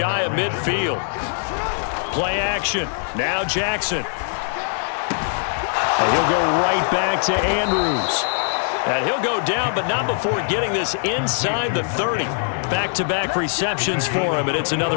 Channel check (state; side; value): silent; right; digital silence